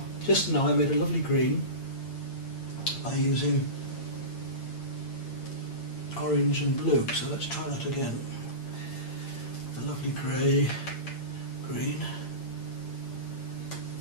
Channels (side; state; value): right; late; 8.8 ms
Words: just now I made a lovely green by using orange and blue, so let's try that again. A lovely grey green,